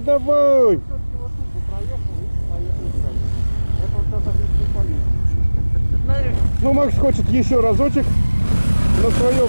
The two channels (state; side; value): inverted; both; correlation -1.00